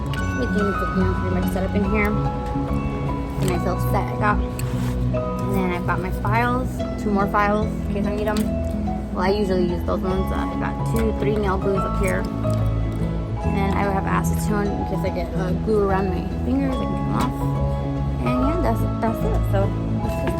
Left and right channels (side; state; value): both; identical; correlation 1.00